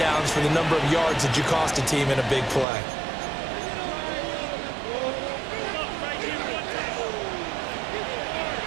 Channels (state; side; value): drops out; left; at 2.7 s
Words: for the number of yards that you cost a team in a big play.